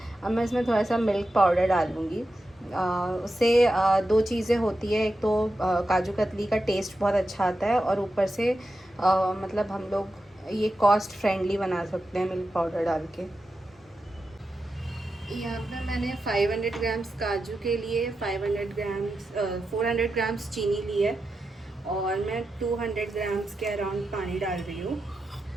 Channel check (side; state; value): both; normal; correlation 0.90